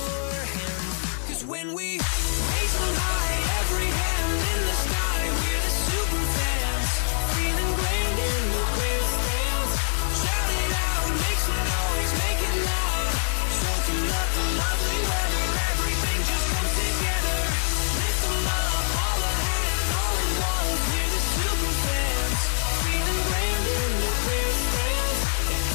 hands. Cause when we raise them high, every hand in the sky, we're the super fans, feeling grand in the grandstands. Shout it out, make some noise, make it loud, soaking up the lovely weather, everything just comes together. Lift them up, all the hands, all at once, we're the super fans, feeling grand in the grandstands. And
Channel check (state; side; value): silent; right; 62 dB below the other